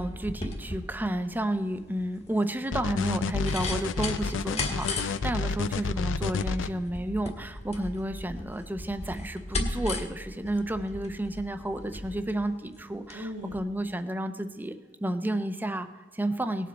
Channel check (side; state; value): both; normal; correlation 0.77